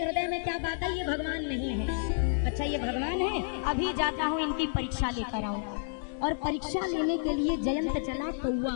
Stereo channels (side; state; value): right; silent; digital silence